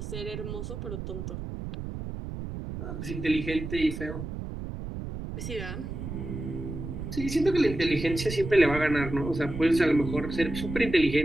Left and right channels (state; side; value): noise; right; rumble, 7 dB below the sound